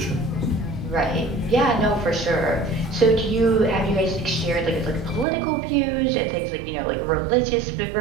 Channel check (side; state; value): left; drops out; at 5.2 s